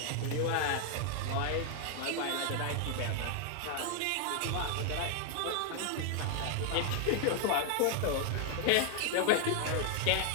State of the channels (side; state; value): both; different; correlation 0.00